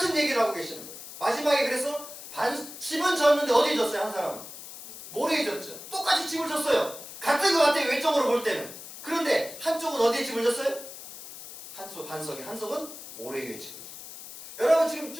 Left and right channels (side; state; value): left; noise; hiss, 13 dB below the sound